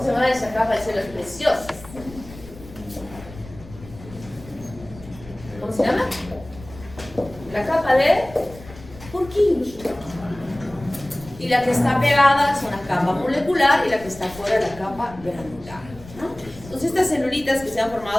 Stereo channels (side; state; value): left; noise; rumble, 18 dB below the sound